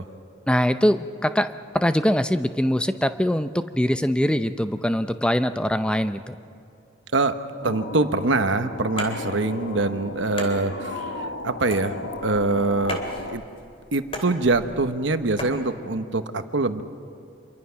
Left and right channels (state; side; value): normal; both; correlation 0.47